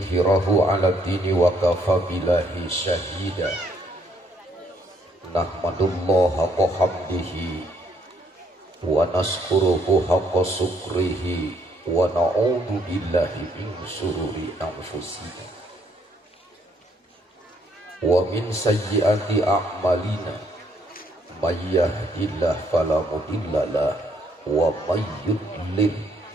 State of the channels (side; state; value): both; normal; correlation 0.69